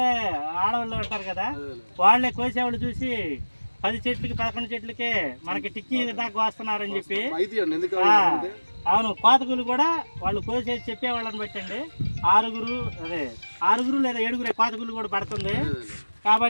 ఆడవాళ్ళు ఉంటారు కదా, వాళ్ళే కోసేవాళ్ళు చూసి 10 చెట్లకి 11 చెట్లకే మనకి టిక్కీ దాకా వస్తున్నారని చెప్పి. అవును, కోతకులు కూడా వాళ్ళు కోసేసి చెప్పేవాళ్ళని బట్టండి 6 లేదా 7 కోతకులు కూడా పడుతుంది.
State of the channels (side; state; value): both; inverted; correlation -1.00